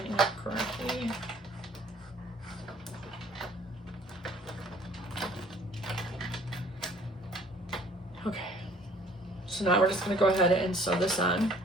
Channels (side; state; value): both; normal; correlation 0.57